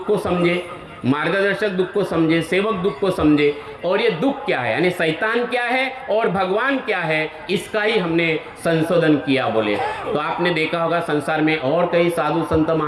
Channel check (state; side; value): identical; both; correlation 1.00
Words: को समझे, मार्गदर्शक दुख को समझे, सेवक दुख को समझे, और ये दुख क्या है यानी शैतान क्या है और भगवान क्या है, इसका ही हमने संशोधन किया बोले। तो आपने देखा होगा संसार में और कई साधु संत